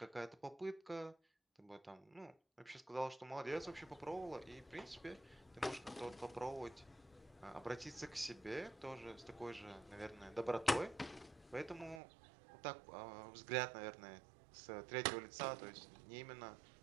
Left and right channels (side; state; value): left; drops out; at 12.0 s